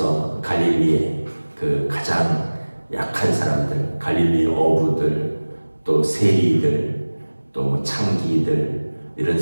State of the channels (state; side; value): inverted; both; correlation -1.00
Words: 갈릴리의 그 가장 약한 사람들, 갈릴리 어부들, 또 세리들, 또 창기들, 이런